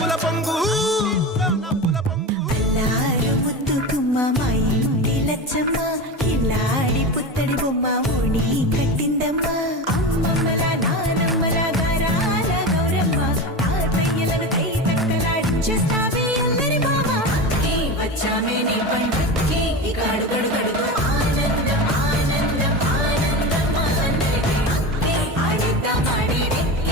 పొంగు ముద్దుకుమ్మ మా ఇంటి లచ్చమ్మ కిల్లాడి పుత్తడి బొమ్మ ఓణి కట్టిందమ్మ అమ్మమ్మల నానమ్మల గారాల గౌరమ్మ తాతయ్యలను కై తక్కలాడించేస్తావే అల్లరి మామ వచ్చామే నీ పండుగకి ఇక అడుగడు గడుగు ఆనందం ఆనందం ఆనందం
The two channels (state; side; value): normal; both; correlation 0.24